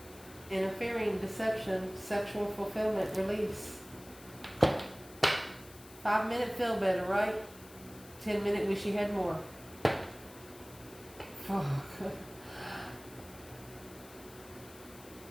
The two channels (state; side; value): noise; left; hiss, 19 dB below the sound